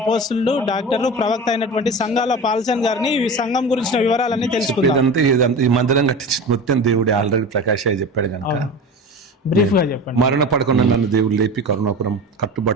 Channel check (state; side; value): normal; both; correlation 0.31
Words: డాక్టర్లు, ప్రవక్త అయినటువంటి సంఘాల పాల్సన్ గారిని ఈ సంఘం గురించిన వివరాలన్నీ తెలుసుకుందాం. ఈ మందిరం కట్టించిన మొత్తం దేవుడు ఆల్రెడీ ప్రకాష్ అయ్య చెప్పాడు కనుక బ్రీఫ్ గా చెప్పండి. మరణ పడకుండా నన్ను దేవుడు లేపి కరుణాపురం